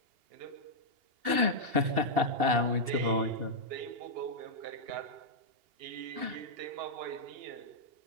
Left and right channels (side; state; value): left; late; 2.7 ms